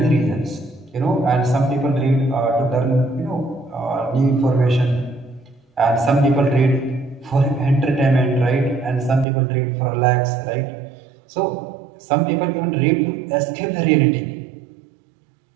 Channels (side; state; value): left; drops out; at 9.2 s